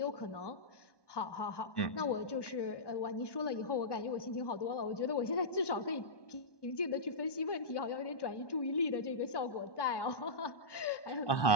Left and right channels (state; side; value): late; right; 1.1 ms